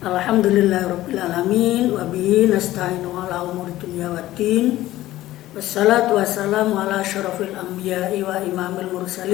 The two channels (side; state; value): right; quieter; 15.4 dB